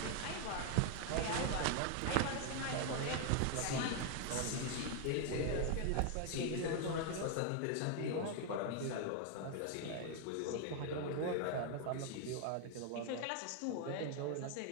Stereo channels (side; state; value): both; different; correlation 0.00